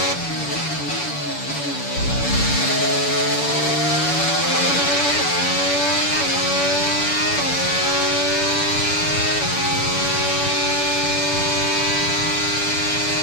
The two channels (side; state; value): right; late; 7.0 ms